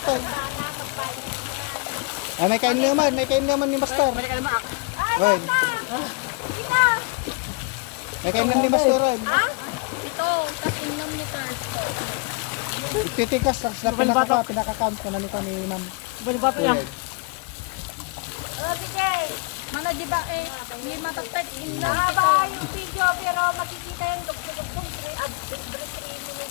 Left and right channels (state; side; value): quieter; right; 30.4 dB